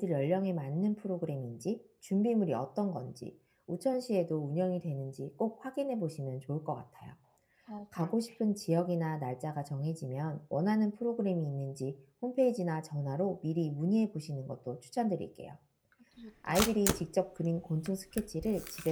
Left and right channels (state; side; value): identical; both; correlation 1.00